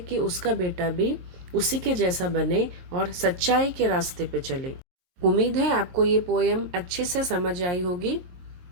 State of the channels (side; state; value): left; late; 22 ms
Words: उसका बेटा भी उसी के जैसा बने और सच्चाई के रास्ते पे चले. उम्मीद है आपको ये पोएम अच्छे से समझ आई होगी.